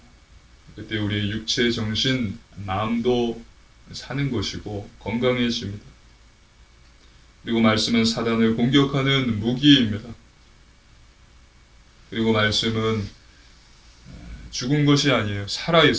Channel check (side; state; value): both; identical; correlation 1.00